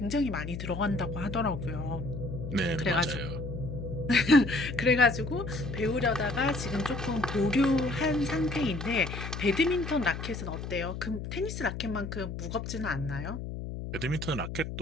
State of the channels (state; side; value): noise; left; hum, 7 dB below the sound